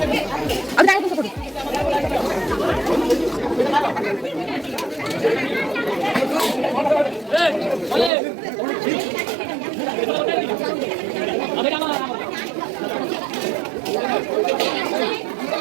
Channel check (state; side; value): drops out; left; at 8.1 s